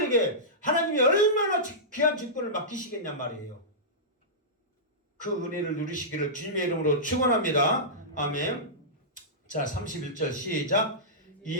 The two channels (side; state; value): both; normal; correlation -0.16